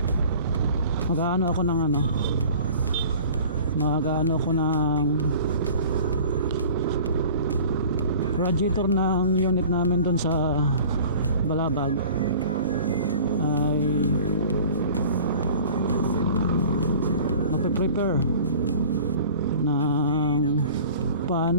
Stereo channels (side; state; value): both; inverted; correlation -0.44